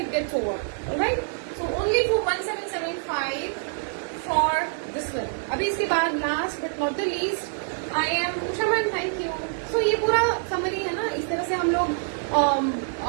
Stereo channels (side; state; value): left; silent; digital silence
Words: gets over. Alright, so only for 1775 for this one. अभी इसके बाद last but not the least I am Usha ma'am. Thank you. So ये पूरा समरी है ना. इस तरह से हम लोग